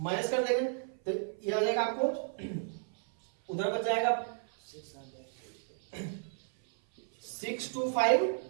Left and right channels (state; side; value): silent; left; 56 dB below the other